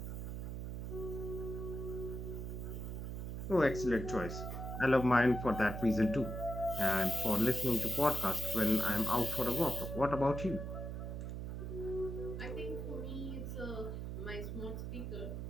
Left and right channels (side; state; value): right; noise; hum, 5 dB below the sound